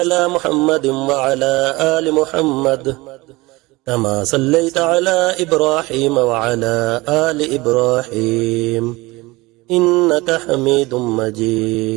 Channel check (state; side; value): quieter; left; 22.0 dB